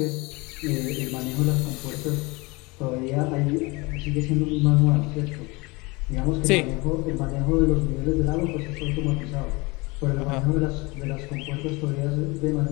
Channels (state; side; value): quieter; right; 25.3 dB